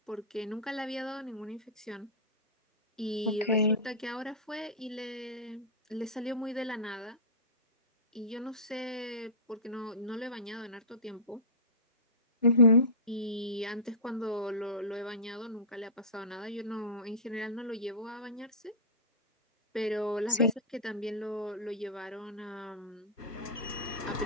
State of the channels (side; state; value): both; normal; correlation -0.17